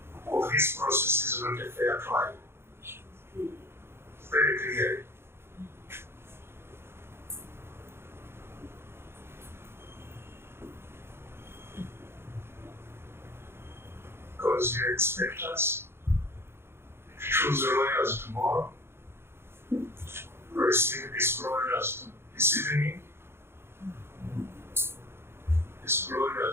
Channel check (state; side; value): late; left; 0.12 ms